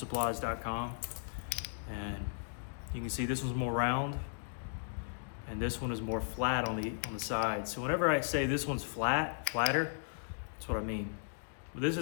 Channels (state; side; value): silent; right; digital silence